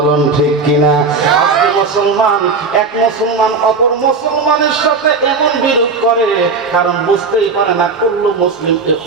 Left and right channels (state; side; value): quieter; left; 4.3 dB